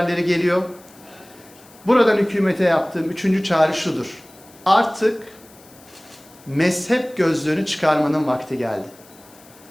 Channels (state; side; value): noise; left; hiss, 25 dB below the sound